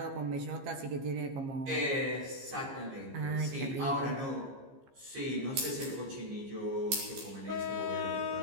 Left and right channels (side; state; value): left; late; 15 ms